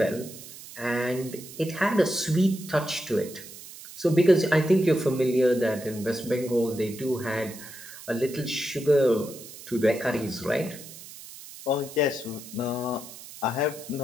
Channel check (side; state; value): right; noise; hiss, 15 dB below the sound